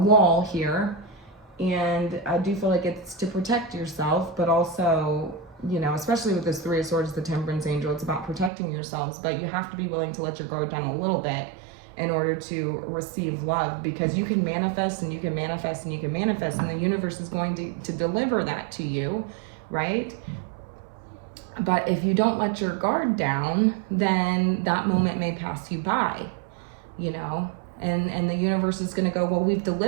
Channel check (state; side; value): drops out; left; at 8.5 s